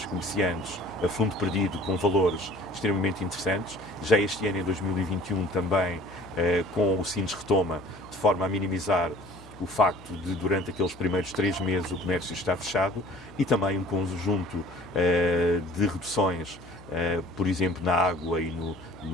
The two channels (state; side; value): noise; left; hum, 21 dB below the sound